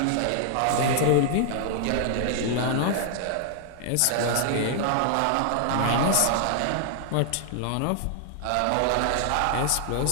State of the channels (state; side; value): different; both; correlation -0.01